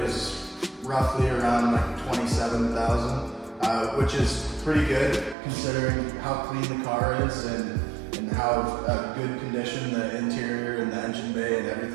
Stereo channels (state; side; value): drops out; left; at 5.4 s